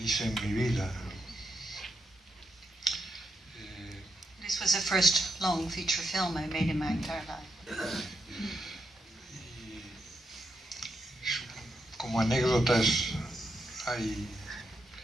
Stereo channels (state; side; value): normal; both; correlation 0.83